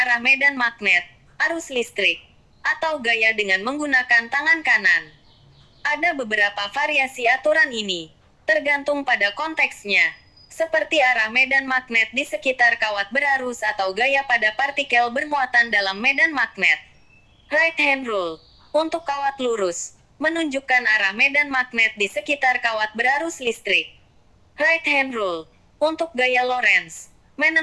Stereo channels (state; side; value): identical; both; correlation 1.00